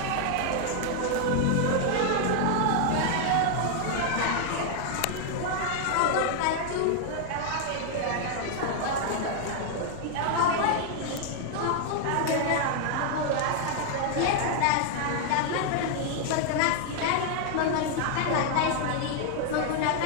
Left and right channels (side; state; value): both; different; correlation 0.00